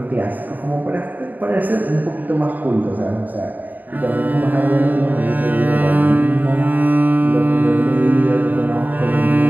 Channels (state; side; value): late; left; 0.085 ms